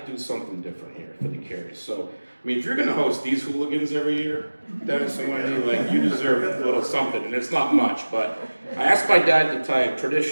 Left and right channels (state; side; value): inverted; both; correlation -1.00